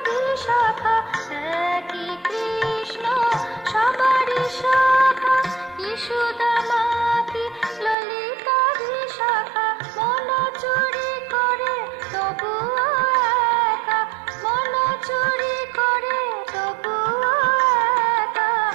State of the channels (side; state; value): left; drops out; at 8.0 s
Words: বিশাখা। একই কৃষ্ণ সবারই শাখা, কি সুদামা কি ললিতা বিশাখা। মন চুরি করে তবুও একা, মন চুরি করে তবুও একা,